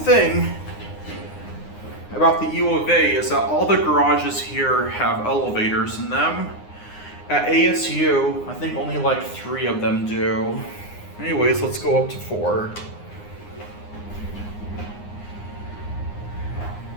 about the U of A is that all the garages here have elevators in them. At ASU, I think only like 3 of them do. Anyways, let's go up to 4.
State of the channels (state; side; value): late; right; 9.7 ms